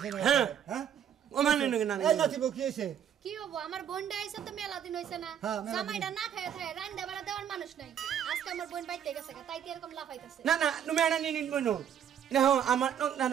না হ্যাঁ। হ্যাঁ Ko manen nang এই নাতি বউ কি হইছে কি হবো আমার বোনটা আইছে তো মেলা দিন হইছে না হ্যাঁ, মেলা দিন। জামাইটা না খায় খায় রান্দা বাড়া দেওয়ার মানুষ নাই আজকে আমার বোন বাইতে গেছে তাই তো এরকম লাফাইতাছে Na nu mena ni nin bono. Na ho amat nok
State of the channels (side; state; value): left; quieter; 9.1 dB